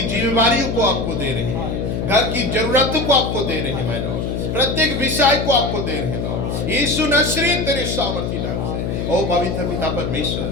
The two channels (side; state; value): left; noise; hum, 2 dB below the sound